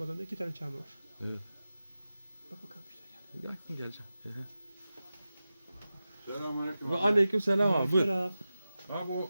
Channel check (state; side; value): inverted; both; correlation -0.94